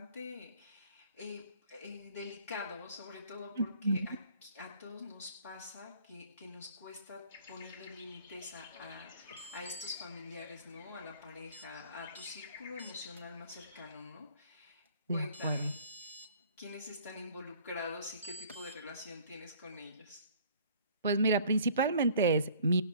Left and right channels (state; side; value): inverted; both; correlation -0.53